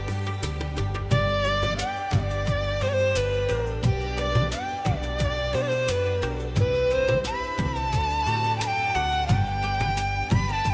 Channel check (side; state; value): both; identical; correlation 1.00